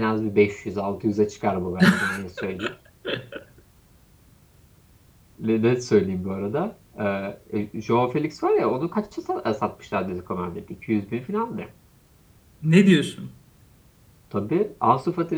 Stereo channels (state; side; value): identical; both; correlation 1.00